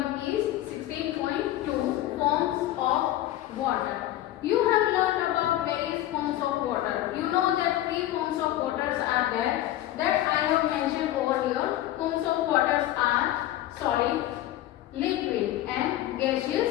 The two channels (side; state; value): right; quieter; 14.2 dB